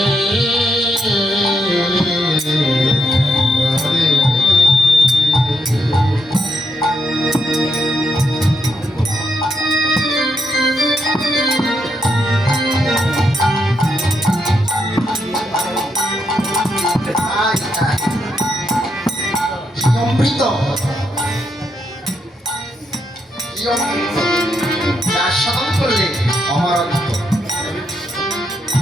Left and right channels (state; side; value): normal; both; correlation 0.79